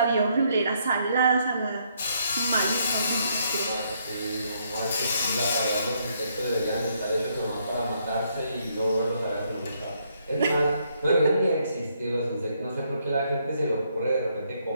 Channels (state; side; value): inverted; both; correlation -0.72